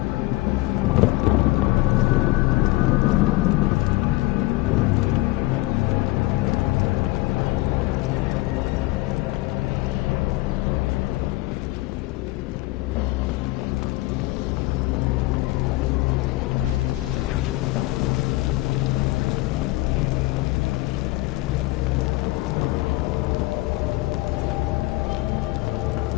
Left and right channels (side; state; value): right; quieter; 19.5 dB